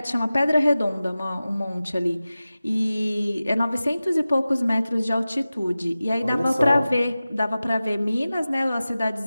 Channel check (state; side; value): inverted; both; correlation -0.96